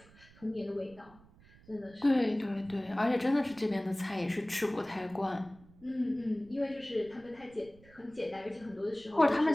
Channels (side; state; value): right; noise; rumble, 25 dB below the sound